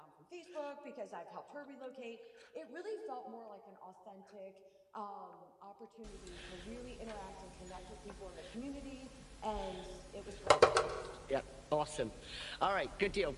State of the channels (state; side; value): identical; both; correlation 1.00